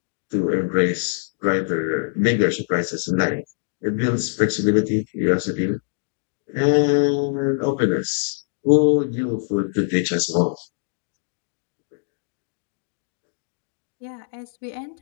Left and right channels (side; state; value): right; silent; digital silence